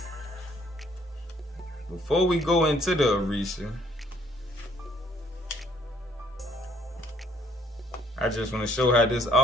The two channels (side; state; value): both; normal; correlation 0.64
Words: Before we go into the Orisha, I just want to show how this